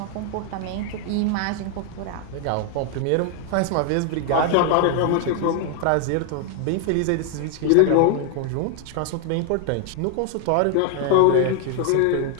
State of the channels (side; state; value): both; different; correlation 0.00